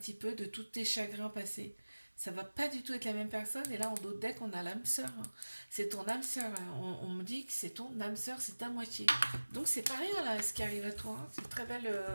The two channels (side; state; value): both; inverted; correlation -1.00